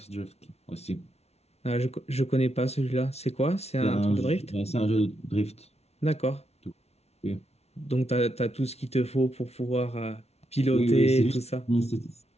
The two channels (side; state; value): right; late; 0.31 ms